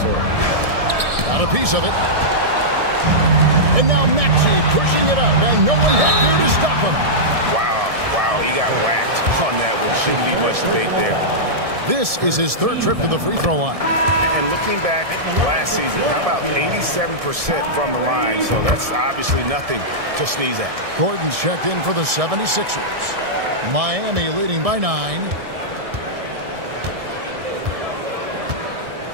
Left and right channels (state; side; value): late; left; 1.7 ms